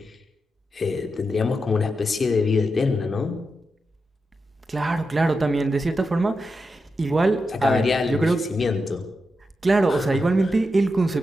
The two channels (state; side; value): normal; both; correlation 0.88